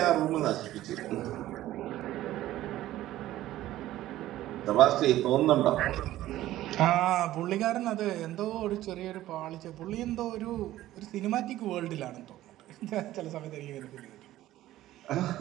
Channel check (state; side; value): quieter; left; 14.6 dB